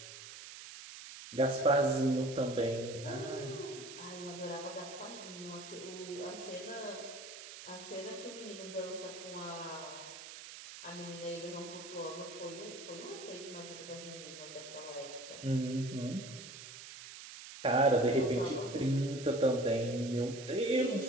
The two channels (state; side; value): noise; right; hiss, 12 dB below the sound